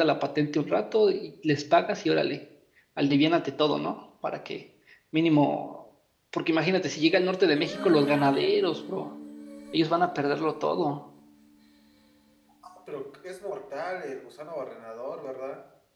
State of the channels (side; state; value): both; identical; correlation 1.00